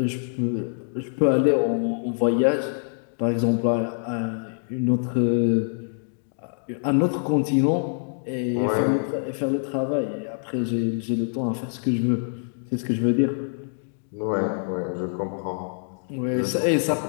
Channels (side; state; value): right; silent; digital silence